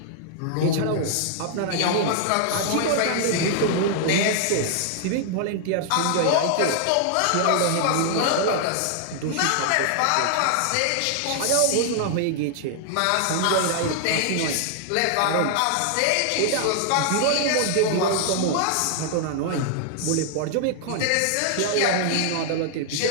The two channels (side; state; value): both; different; correlation -0.01